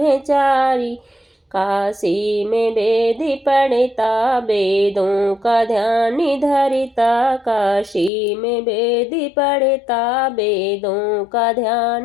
काशी में वेद पढ़ता, वेदों का ध्यान धरता, काशी में वेद पढ़ता, वेदों का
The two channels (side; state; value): right; drops out; at 8.1 s